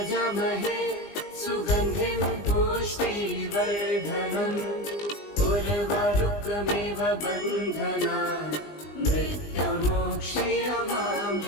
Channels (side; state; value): right; late; 20 ms